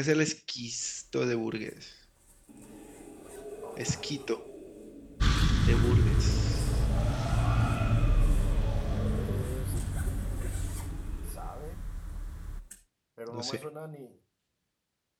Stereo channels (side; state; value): both; identical; correlation 1.00